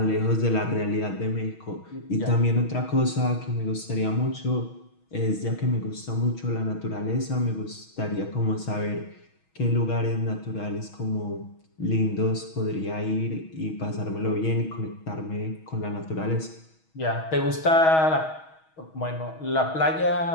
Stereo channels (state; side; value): late; right; 6.3 ms